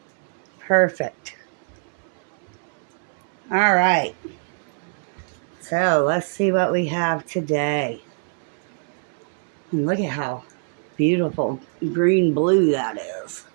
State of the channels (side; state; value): left; silent; 63 dB below the other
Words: Perfect. All right. So let's see what we have today. And look at how beautiful green-blue that is.